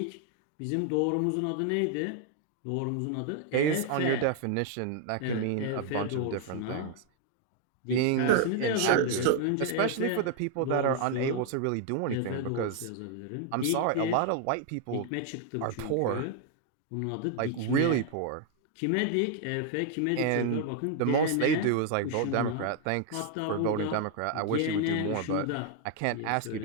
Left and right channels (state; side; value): different; both; correlation 0.00